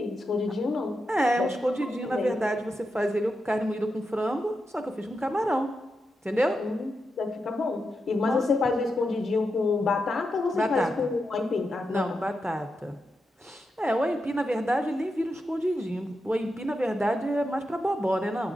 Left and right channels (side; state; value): both; normal; correlation 0.87